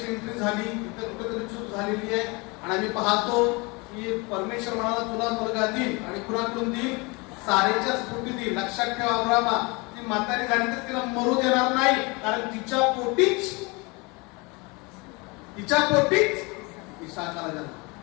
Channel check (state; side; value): quieter; right; 27.3 dB